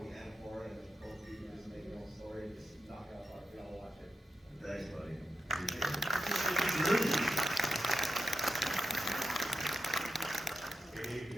and horror, and both of you just make your own story, just knock it out of the park. We all watch it. Thanks, buddy.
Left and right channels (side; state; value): both; normal; correlation 0.88